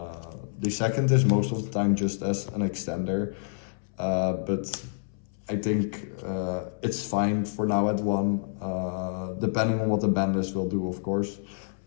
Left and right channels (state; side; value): silent; right; 59 dB below the other